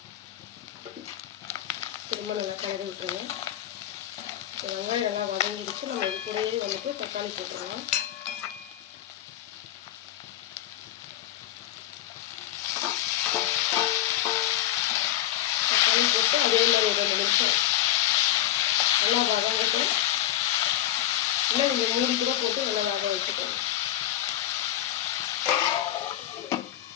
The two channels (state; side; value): quieter; right; 13.0 dB